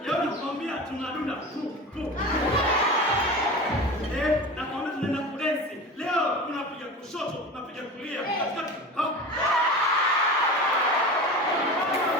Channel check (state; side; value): normal; both; correlation 0.31